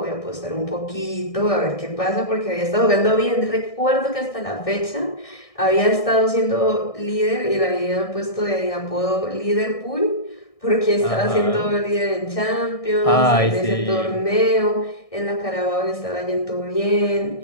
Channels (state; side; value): late; right; 1.6 ms